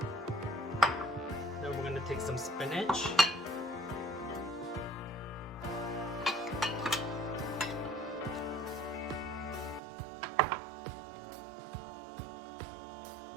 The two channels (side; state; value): left; drops out; at 9.8 s